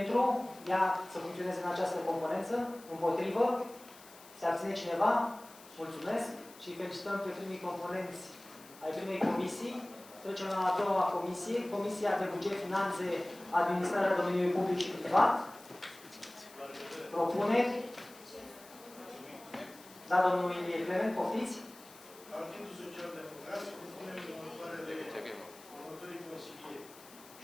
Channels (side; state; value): left; noise; hiss, 21 dB below the sound